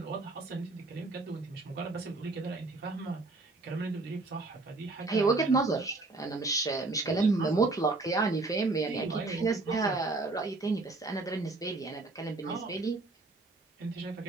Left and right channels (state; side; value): quieter; left; 3.3 dB